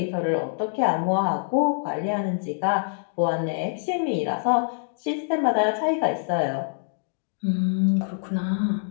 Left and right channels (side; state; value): right; silent; digital silence